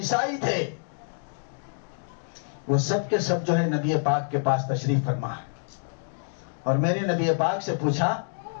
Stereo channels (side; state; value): right; silent; digital silence